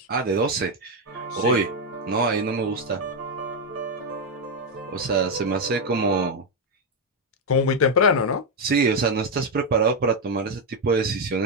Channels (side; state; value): both; normal; correlation 0.04